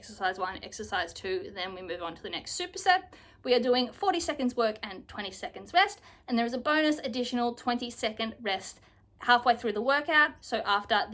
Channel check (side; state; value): both; identical; correlation 1.00